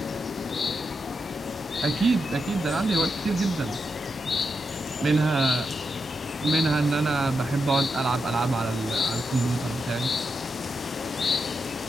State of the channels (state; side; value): normal; both; correlation 0.85